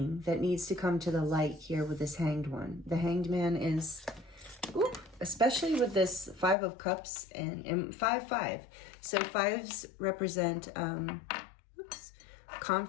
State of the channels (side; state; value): right; drops out; at 6.6 s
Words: that needs to come to the light here with this Hanged One. The Hanged Man is, especially with this Five of Cups and 5-5. So fives represent